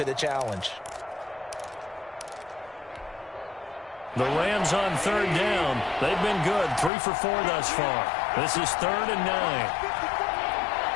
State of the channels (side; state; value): right; drops out; at 6.9 s